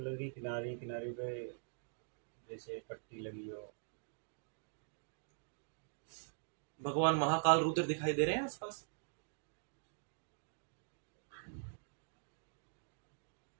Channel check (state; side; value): silent; left; digital silence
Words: की किनारी किनारी पे जैसे पट्टी लगी हो। भगवान महाकाल रुद्र दिखाई दे रहे हैं आसपास?